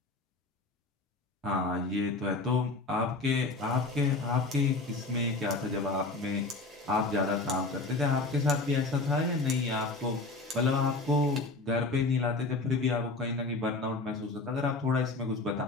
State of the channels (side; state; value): right; quieter; 3.4 dB